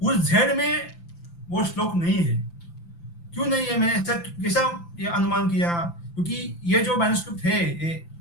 उस जेड में वो श्लोक नहीं है। क्यों नहीं है, मैंने कैसा ये अनुमान किया, क्योंकि ये जो मैन्युस्क्रिप्ट है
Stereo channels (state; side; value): late; right; 5.9 ms